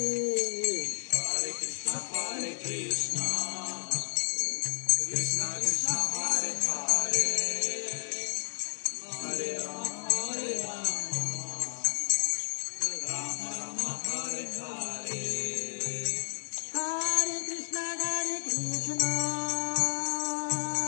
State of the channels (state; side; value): silent; right; 57 dB below the other